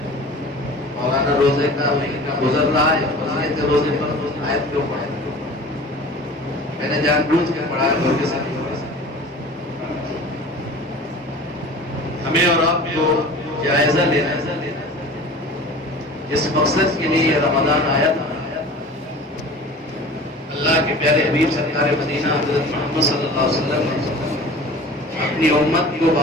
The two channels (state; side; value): normal; both; correlation 0.40